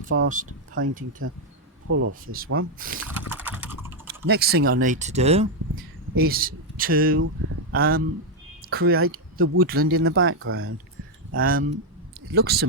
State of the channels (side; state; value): both; normal; correlation 0.01